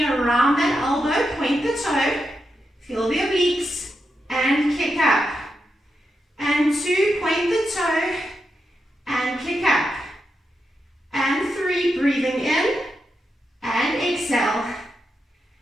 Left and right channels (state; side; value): normal; both; correlation 0.86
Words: around that elbow, point the toe, feel the obliques, and kick up. And 2, point the toe, and kick up. And 3, breathing in, and exhale.